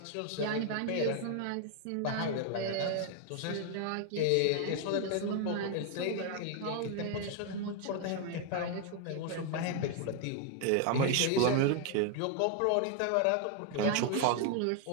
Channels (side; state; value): both; different; correlation 0.00